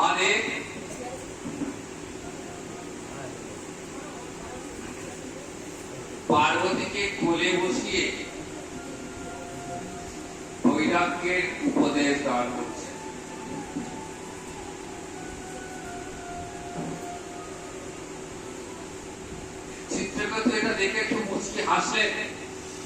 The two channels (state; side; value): identical; both; correlation 1.00